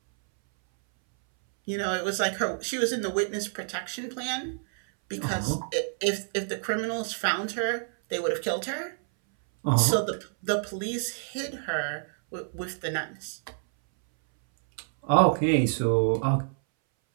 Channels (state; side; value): silent; left; 59 dB below the other